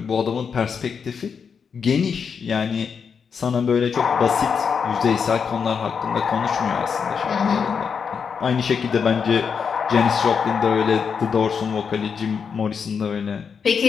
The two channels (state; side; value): quieter; right; 6.3 dB